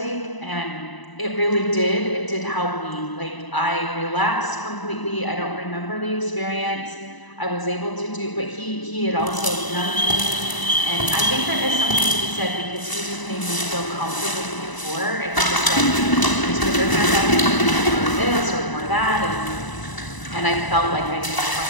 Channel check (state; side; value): late; right; 1.0 ms